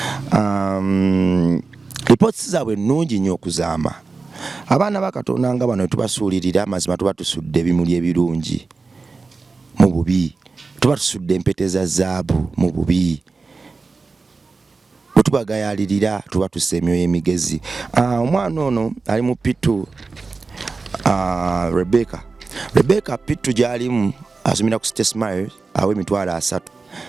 Reports zaabwe nnungi nnyo okuzaama. Abaana ba Katonda nga bano tubasuulirira amazima tuba tusudde ebimuli ebirungi mu bubi. Tuba tusudde empete za zaabu mu bubi. Bwe tubagayalirira tuba tussa emyoyo emigezi. Omwana ono ali mu P2 Rebecca P2 gy'alimu asomera ku State Smile aw'emitwalo 3.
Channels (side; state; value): left; quieter; 4.1 dB